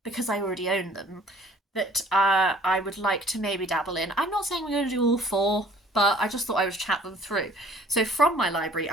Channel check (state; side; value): normal; both; correlation 0.54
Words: because I already own them, that I would like to maybe dabble in. I'm not saying we're going to do all 4, but I just thought I would chat them through. So from my library,